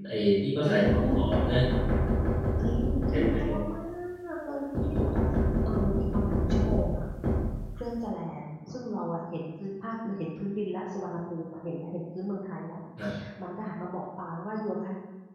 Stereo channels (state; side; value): identical; both; correlation 1.00